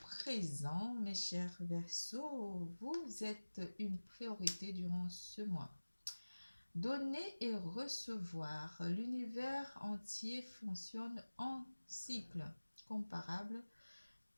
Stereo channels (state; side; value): inverted; both; correlation -1.00